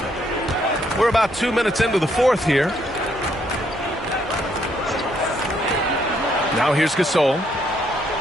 We're about 2 minutes into the fourth here. Now here's Gasol.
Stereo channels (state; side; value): normal; both; correlation 0.71